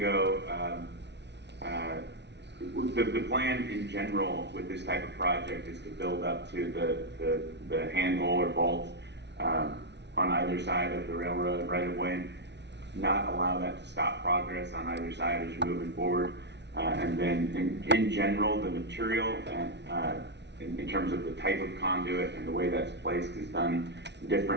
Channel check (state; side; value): late; left; 0.50 ms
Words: The plan in general with this type of project is to build up to the handhole or vault on either side of the railroad right of way, not allow that to stop progress on either side as you're moving forward. And then in general, the material and in terms of the type of conduit and the way that's placed is done